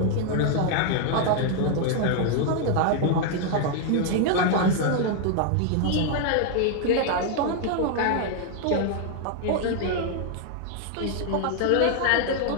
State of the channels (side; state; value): both; different; correlation 0.00